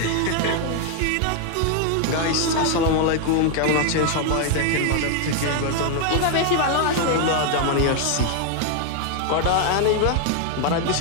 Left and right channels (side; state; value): both; different; correlation 0.00